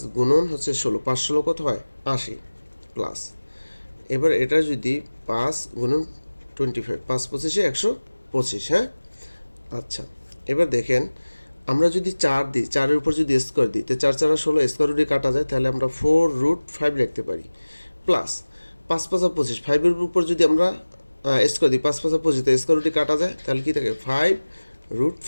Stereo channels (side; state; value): both; inverted; correlation -1.00